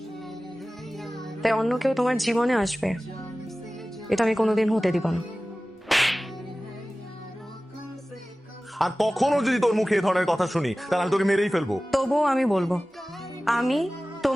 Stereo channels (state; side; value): normal; both; correlation 0.97